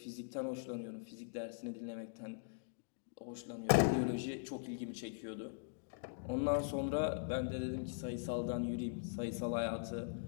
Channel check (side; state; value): right; silent; digital silence